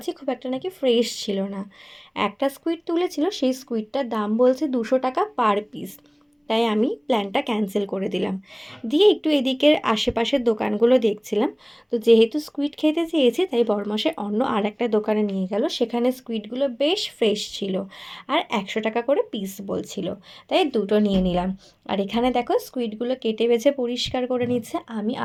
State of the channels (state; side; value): identical; both; correlation 1.00